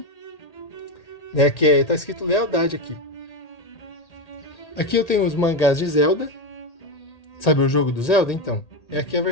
né, que tá escrito Lealdade aqui. Aqui eu tenho os mangás de Zelda. Sabe o jogo do Zelda? Então, é aqui a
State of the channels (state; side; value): late; right; 1.8 ms